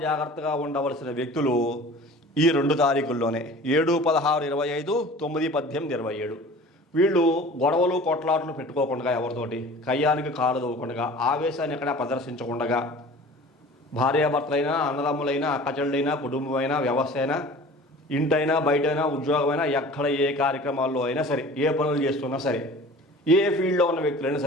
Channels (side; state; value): both; normal; correlation 0.43